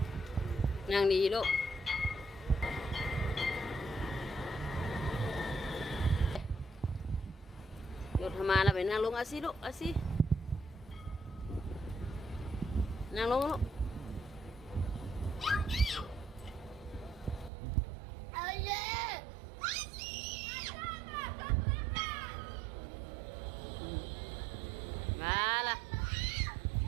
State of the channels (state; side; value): drops out; left; at 17.5 s